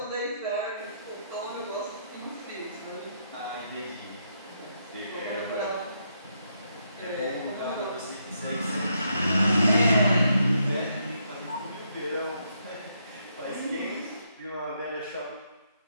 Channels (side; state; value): both; inverted; correlation -0.77